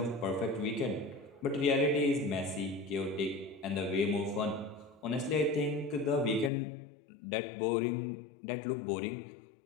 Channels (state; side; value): drops out; right; at 6.5 s